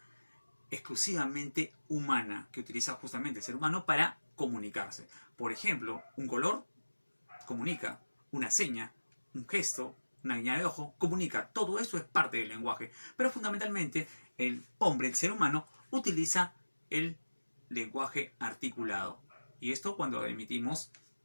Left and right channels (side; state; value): both; inverted; correlation -1.00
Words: exclusivamente humana que utiliza justamente el ser humano para comunicarse. Por ejemplo, un color comunica, una seña, un gesto, una guiñada de ojo, comunica. Todo eso es parte del lenguaje. Pero fundamentalmente el hombre, el ser humano, utiliza el lenguaje articulado. Y esto cuando emitimos